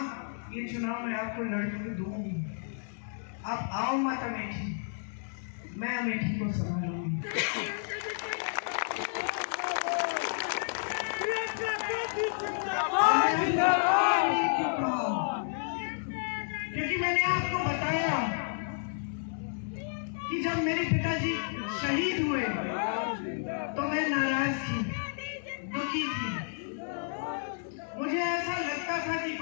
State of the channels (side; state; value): right; silent; digital silence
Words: ये चुनाव मैं आपको लड़के दूंगी, आप आओ मत अमेठी, मैं अमेठी को संभालूंगी। क्योंकि मैंने आपको बताया कि जब मेरे पिताजी शहीद हुए तो मैं नाराज थी, दुखी थी। मुझे ऐसा लगता था कि